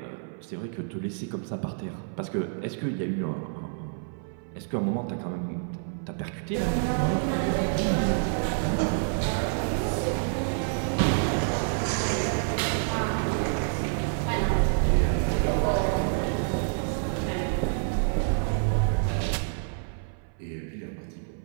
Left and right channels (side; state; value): left; silent; 58 dB below the other